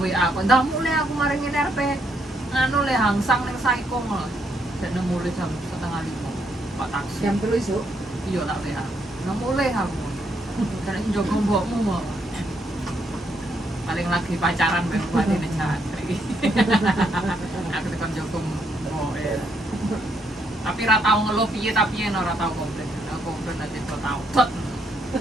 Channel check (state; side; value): normal; both; correlation 0.74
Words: aku. Ndak mulai aku mari ngene RP. Nganu le hangsang ning Saikong lho. Dene mulai jam 4:30. Pak taksi. Jam 3 esuk. Iya tak WA. Nang mulai aku. Karena njogo mbokmu kok. Paling lagi pacaran mbek buatine jantri. Aku tekan njogo mbok ya. Tapi ra tau ngeluh piye tapi yen ora tau komplain. Aku komplain aja kok tau. Tot